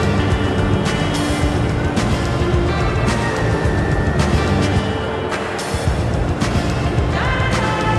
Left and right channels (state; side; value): identical; both; correlation 1.00